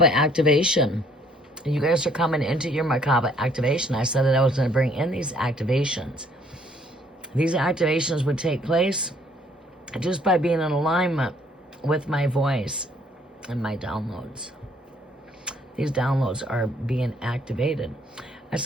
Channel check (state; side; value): normal; both; correlation 0.63